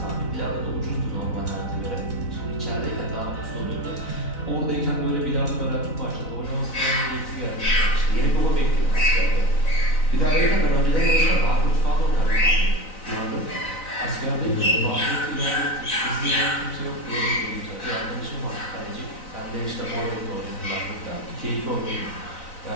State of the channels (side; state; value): right; late; 4.0 ms